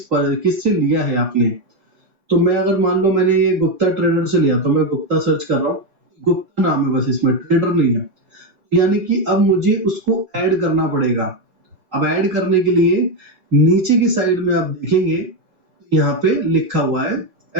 लिया है आपने। तो मैं अगर मान लो मैंने ये गुप्ता ट्रेडर से लिया, तो मैं गुप्ता सर्च कर रहा हूँ, गुप्ता नाम है बस, इसमें ट्रेडर नहीं है। यानी कि अब मुझे उसको ऐड करना पड़ेगा। अब ऐड करने के लिए नीचे की साइड में आप देखेंगे यहाँ पे लिखा हुआ है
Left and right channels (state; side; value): late; left; 3.9 ms